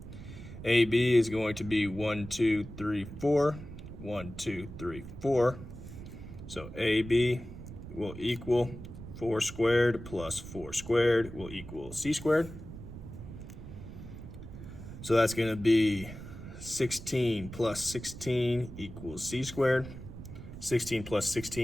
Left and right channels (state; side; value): noise; right; rumble, 12 dB below the sound